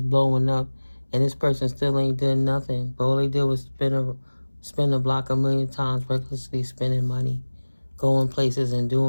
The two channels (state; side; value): inverted; both; correlation -1.00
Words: blowing up and this person still ain't done nothing. But all they did was spin a block 1,000,000 times, recklessly spending money, going places and